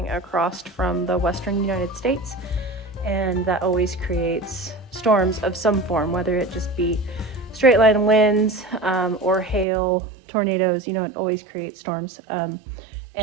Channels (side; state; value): left; drops out; at 9.7 s